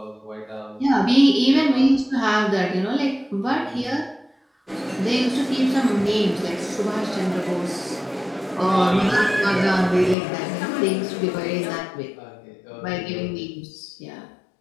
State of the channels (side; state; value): right; drops out; at 10.2 s